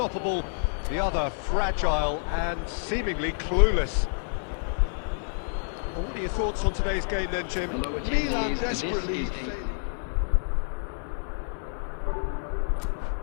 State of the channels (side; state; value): right; silent; 59 dB below the other